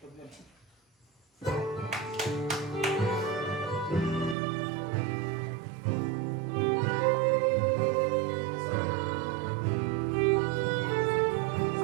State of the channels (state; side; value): drops out; left; at 4.4 s